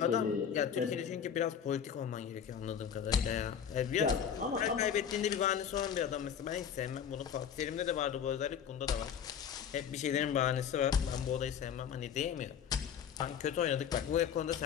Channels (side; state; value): right; quieter; 8.2 dB